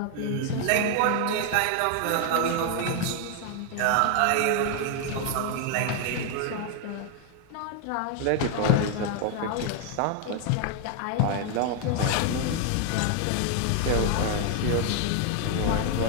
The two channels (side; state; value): both; different; correlation 0.00